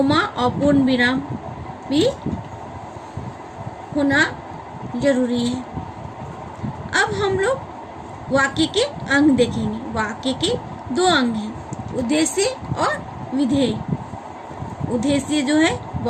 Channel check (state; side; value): identical; both; correlation 1.00